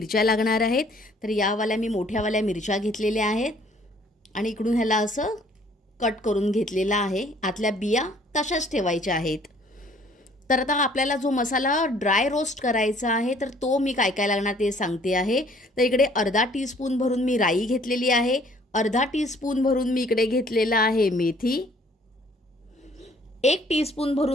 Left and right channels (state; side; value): normal; both; correlation 0.58